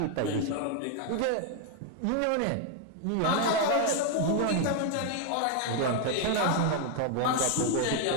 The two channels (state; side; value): different; both; correlation 0.01